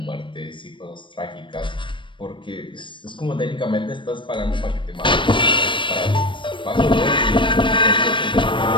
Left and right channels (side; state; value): right; late; 0.24 ms